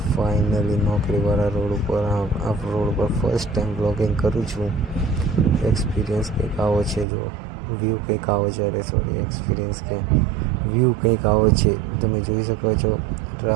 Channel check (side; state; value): left; drops out; at 7.1 s